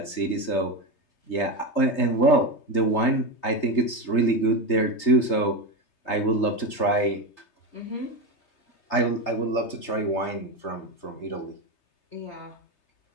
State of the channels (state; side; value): late; right; 3.3 ms